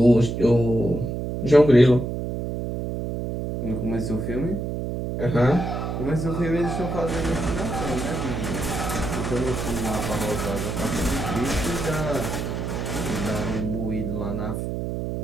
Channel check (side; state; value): right; noise; hum, 3 dB below the sound